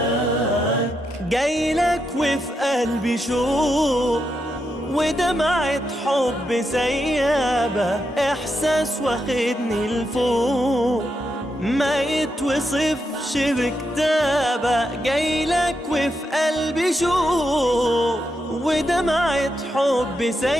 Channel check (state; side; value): normal; both; correlation 0.84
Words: جايلك وفي قلبي شوق ودمعة حب سيابة، إحساس واخدني لفوق ما يتوصفش بكتابة. جايلك وفي قلبي شوق ودمعة حب